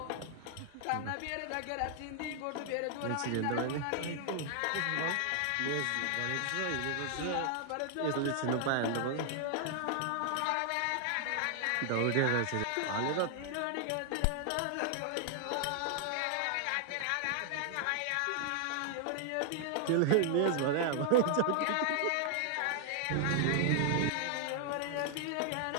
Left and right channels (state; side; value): different; both; correlation 0.00